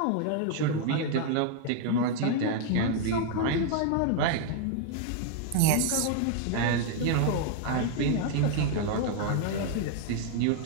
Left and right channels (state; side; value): different; both; correlation 0.00